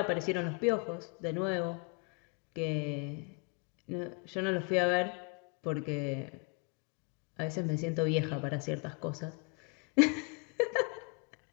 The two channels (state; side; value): quieter; right; 34.8 dB